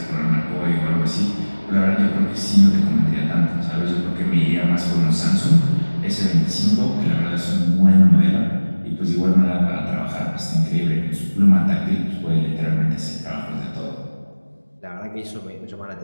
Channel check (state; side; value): inverted; both; correlation -1.00